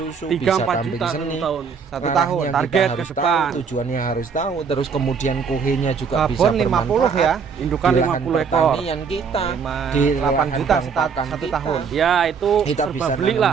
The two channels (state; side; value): quieter; left; 6.0 dB